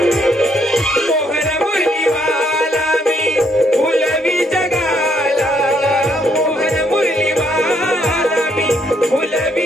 मोहन मुरलीवाला मी फुलवी जगाला मोहन मुरलीवाला मी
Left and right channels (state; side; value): normal; both; correlation 0.71